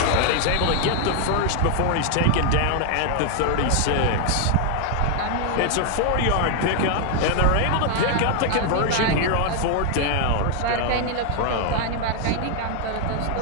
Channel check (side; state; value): both; different; correlation 0.00